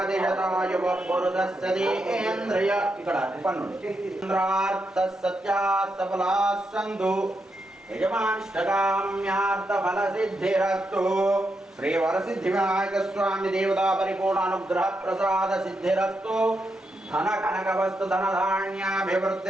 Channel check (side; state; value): both; normal; correlation 0.83